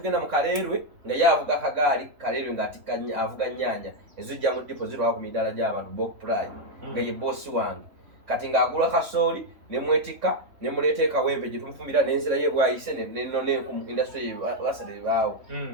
mu Kaleerwe nga ye avuga akagaali Kaleerwe ng'atikka avuga nnyanya ezijja mu dipo zirwako ku midaala gy'abantu Bok Pride nga ye boosi wange kati ng'agula kasooli ne mwetikka ne muleeta e Kawempe gye tumufumbira n'enzira ye bwayise neno n'enku industry basale baawo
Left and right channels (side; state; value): left; late; 3.5 ms